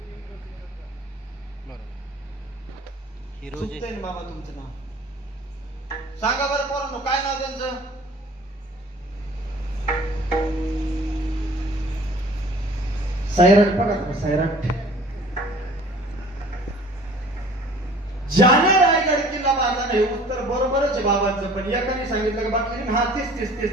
चुकतंय बाबा तुमचं नाव सांगा बरं पोरांनो, काय नाव त्यांचं? सैराट. बघा सैराट. ज्याने रायगड किल्ला बांधला नाही. उत्तर बरोबरच आहे बाबांचं, पण एकाने सांगितलं की बाकी हा तीस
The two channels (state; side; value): normal; both; correlation 0.49